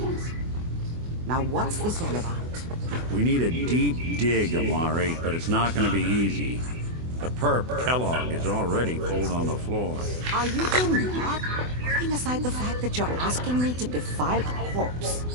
Now, what's this all about? We need a deep dig, Amari, but it's not going to be easy. The perp, Kellogg, is already cold on the floor. Are you two mad? Putting aside the fact that you're asking me to defile a corpse,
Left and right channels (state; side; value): late; left; 24 ms